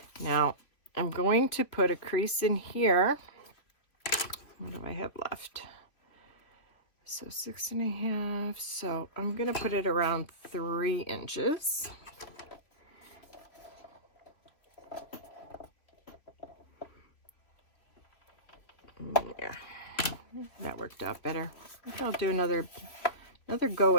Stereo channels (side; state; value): right; late; 3.0 ms